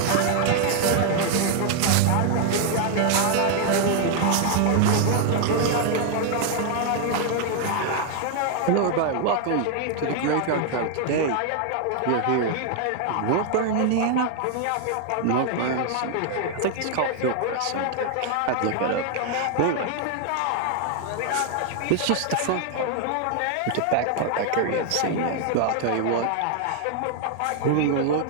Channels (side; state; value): both; different; correlation 0.00